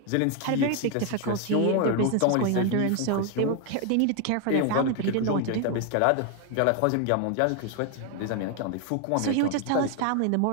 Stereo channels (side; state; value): both; different; correlation 0.01